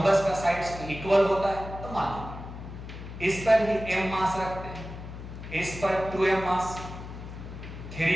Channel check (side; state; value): left; noise; hum, 11 dB below the sound